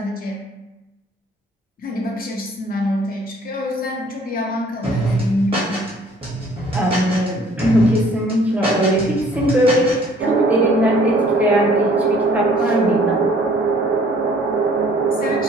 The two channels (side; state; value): both; normal; correlation 0.57